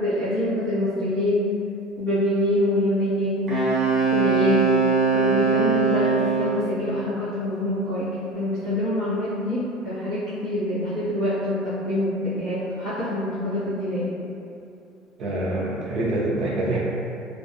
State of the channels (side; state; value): both; normal; correlation 0.32